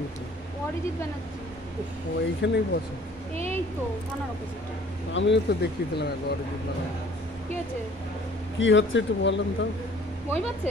গেছে? অরিজিৎ ব্যানার্জি। ও এইখানেই বসে। এই তো থানার অপোজিটে। আমিও তো দেখিয়েছিলাম একবার অরিজিৎ ব্যানার্জি। কি হচ্ছে? কি হচ্ছে একটু বলেন তো। বই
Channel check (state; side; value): normal; both; correlation 0.54